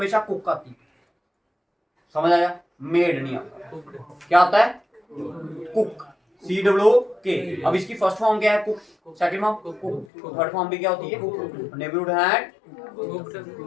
कुक आती है। समझ आया, मेड नहीं आता। क्या आता है, कुक, CWK। अब इसकी फर्स्ट फॉर्म क्या है, cook, second form cook, third form भी क्या होती है, नेबरहुड हैड,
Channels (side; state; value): right; drops out; at 10.1 s